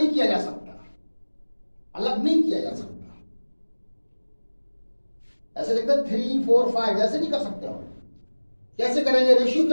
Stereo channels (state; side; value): inverted; both; correlation -1.00